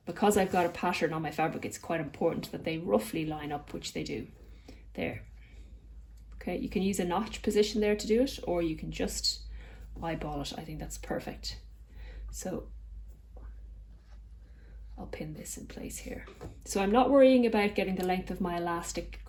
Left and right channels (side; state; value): both; identical; correlation 1.00